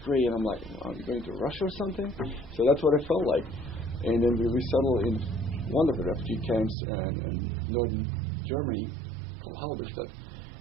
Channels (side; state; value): left; drops out; at 6.8 s